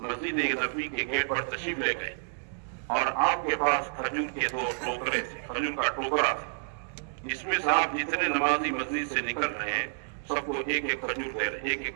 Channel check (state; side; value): silent; left; digital silence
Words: مسجد نبوی کے گیٹ پر تشریف لے گئے اور آپ کے پاس کھجور کے 2 ٹوکرے تھے، کھجور کا ٹوکرا تھا. اس میں سے آپ جتنے نمازی مسجد سے نکل رہے ہیں سب کو ایک ایک کھجور دے رہے، ایک ایک